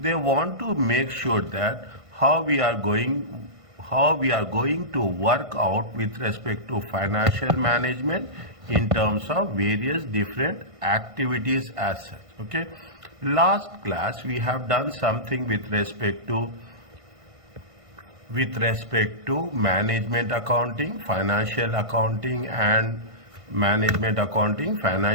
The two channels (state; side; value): late; left; 1.5 ms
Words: want to make sure that how we are going to work out with respect to financial management in terms of various different activities as such. Okay, last class we have done something with respect to management accounting, financial accounting, and management accounting,